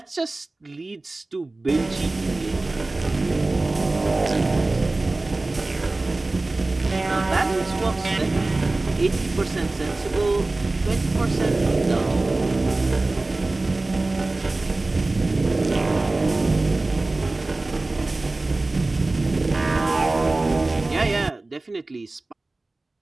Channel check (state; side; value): quieter; left; 3.1 dB